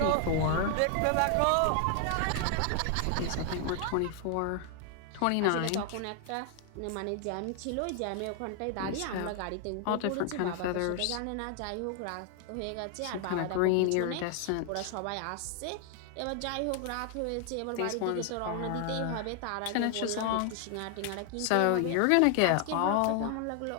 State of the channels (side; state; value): both; different; correlation 0.00